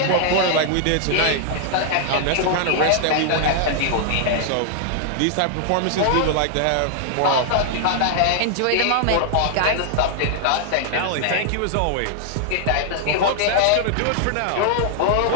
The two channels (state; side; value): different; both; correlation -0.01